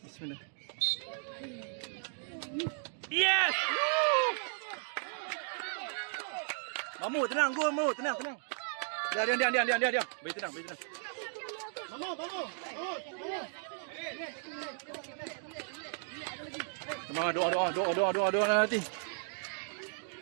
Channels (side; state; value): left; silent; 54 dB below the other